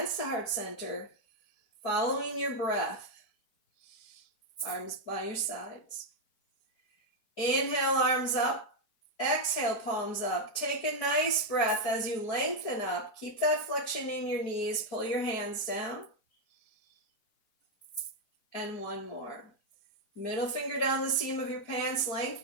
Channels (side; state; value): right; late; 4.6 ms